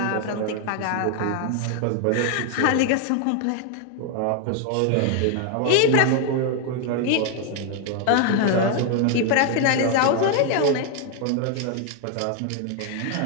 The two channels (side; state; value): both; different; correlation 0.00